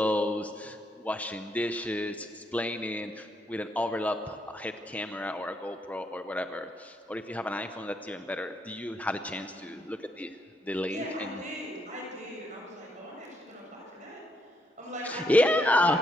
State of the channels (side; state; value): both; normal; correlation 0.75